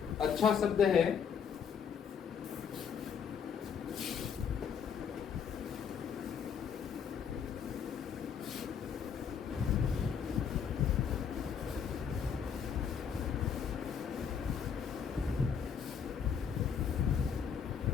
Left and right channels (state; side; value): quieter; right; 7.2 dB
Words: अच्छा शब्द है।